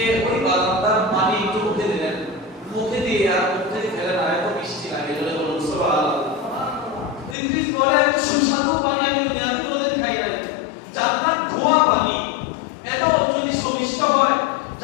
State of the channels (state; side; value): drops out; right; at 7.4 s